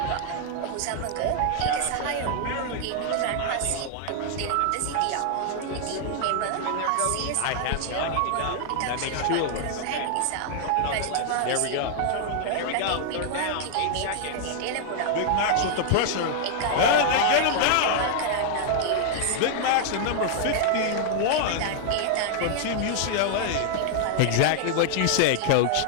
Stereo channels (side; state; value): both; different; correlation 0.00